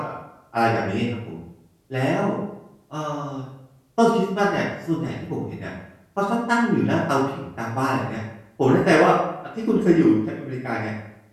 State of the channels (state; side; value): identical; both; correlation 1.00